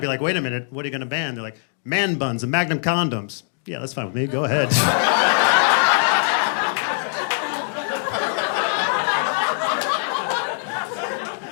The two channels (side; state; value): right; silent; digital silence